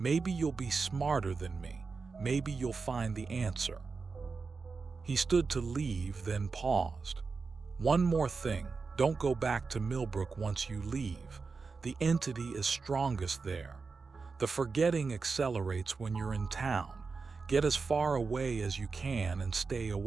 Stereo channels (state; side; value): quieter; left; 4.6 dB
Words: you'll be smarter than me. Maybe you'll find the answer." He stood to leave, then paused. "One more thing, don't go back to Millbrook once you leave. The entity is strongest there. The forgetting accelerates when you're in town. Get as far away as you can and stay